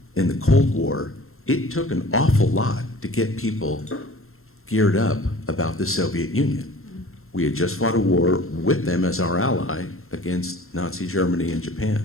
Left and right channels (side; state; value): right; late; 0.62 ms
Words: the Cold War, it took an awful lot to get people geared up about the Soviet Union. We had just fought a war with them as our ally against Nazi Germany and